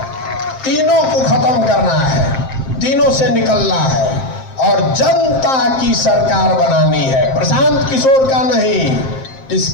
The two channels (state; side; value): late; right; 7.6 ms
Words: तीनों को खत्म करना है, तीनों से निकलना है और जनता की सरकार बनानी है, प्रशांत किशोर का नहीं।